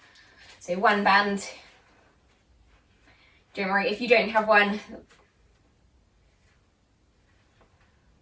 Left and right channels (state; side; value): identical; both; correlation 1.00